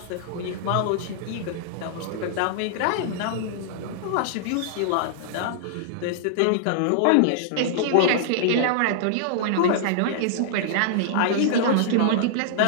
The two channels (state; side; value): different; both; correlation -0.01